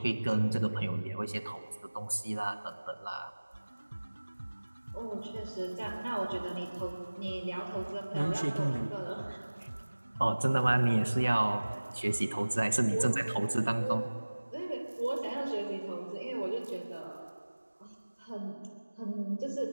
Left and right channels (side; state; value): both; inverted; correlation -1.00